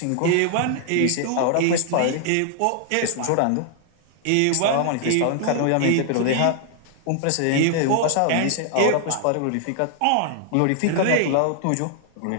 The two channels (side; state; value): both; different; correlation 0.00